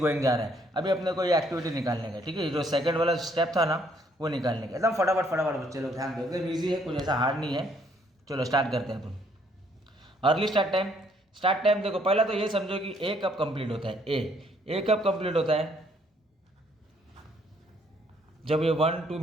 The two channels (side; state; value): both; normal; correlation 0.67